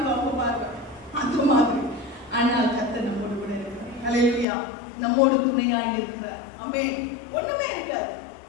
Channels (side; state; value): right; drops out; at 4.5 s